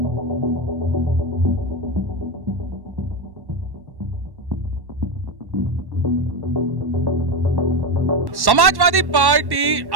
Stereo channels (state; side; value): late; left; 1.1 ms